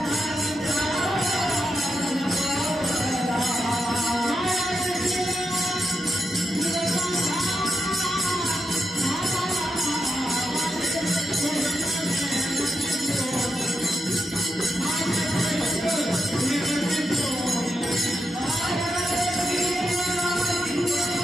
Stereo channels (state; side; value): normal; both; correlation 0.85